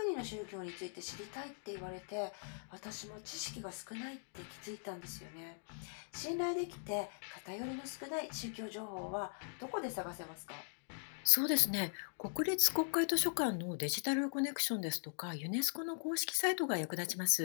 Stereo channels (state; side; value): silent; right; digital silence